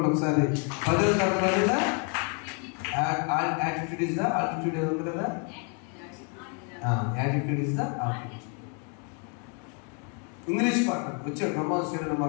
ఒకసారి 10వ తరగతిలో యాటిట్యూడ్ ఇస్ ద ఆల్టిట్యూడ్ ఉంది కదా, attitude is the altitude. English పాట వచ్చాడు బ్రహ్మాండ స్టేడియం,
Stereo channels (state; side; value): quieter; right; 38.0 dB